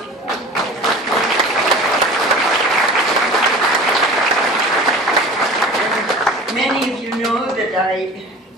And many of you know that I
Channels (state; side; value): normal; both; correlation 0.39